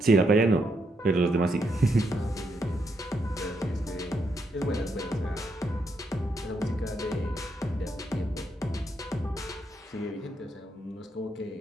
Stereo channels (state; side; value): normal; both; correlation 0.78